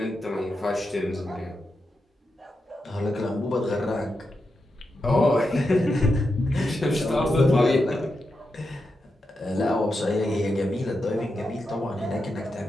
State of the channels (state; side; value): normal; both; correlation 0.87